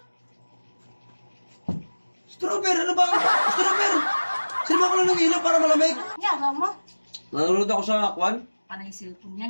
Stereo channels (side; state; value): both; inverted; correlation -1.00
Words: Strawberry, ano ba? Strawberry! Sino ko lang ng ilaw para malamig? Yawa mo. Nanonood ako sa kwan. Panay cellphone